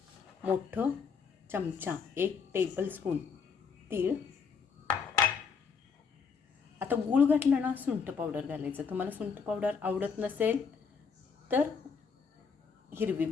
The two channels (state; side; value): quieter; right; 5.9 dB